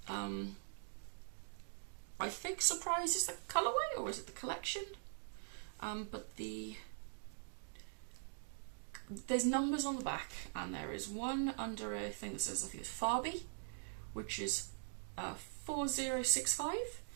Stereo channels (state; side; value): silent; left; digital silence